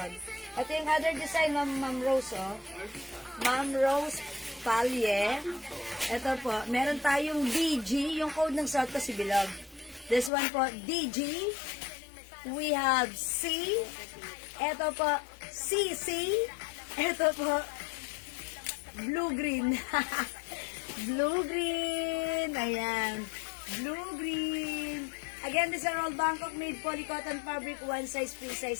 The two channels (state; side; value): drops out; right; at 10.3 s